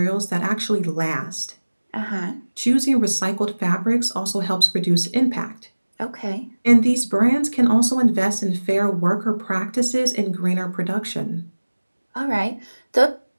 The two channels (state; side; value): inverted; both; correlation -1.00